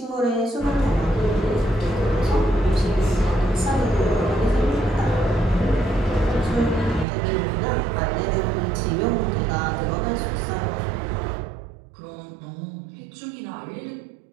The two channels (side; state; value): left; drops out; at 7.1 s